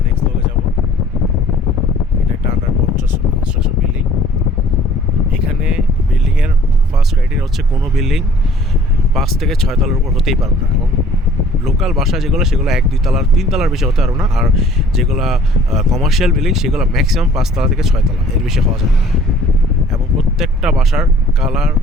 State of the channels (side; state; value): both; normal; correlation 0.53